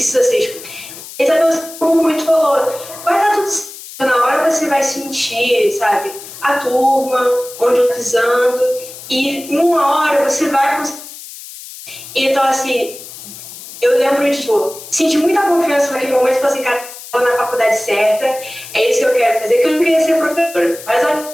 ser exposto. Isabel, como muito falou, vai dar tudo certo, na hora você vai sentir, sabe, a turma, onde eu pisando, e em uma hora você vai conseguir. Então, assim, eu lembro de, tipo, senti muita confiança naquele momento e falei assim, cara, estou na faculdade certa, é isso que eu quero fazer, que eu não queria ser professora, mas a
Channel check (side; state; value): left; noise; hiss, 14 dB below the sound